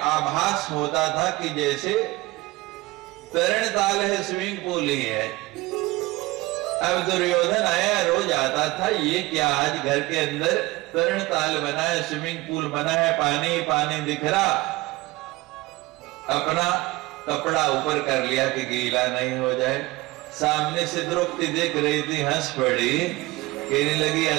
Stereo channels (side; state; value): left; quieter; 20.5 dB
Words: आभास होता था कि जैसे तरण ताल है, स्विमिंग पूल ही है। अब दुर्योधन आया, रोज आता था, ये क्या आज घर के अंदर तरण ताल बना है, स्विमिंग पूल बना है, पानी पानी दिख रहा। अपना कपड़ा ऊपर कर लिया कि गीला नहीं हो जाए। सामने से द्रौपदी देख रही थी, हंस पड़ी, कहने लगी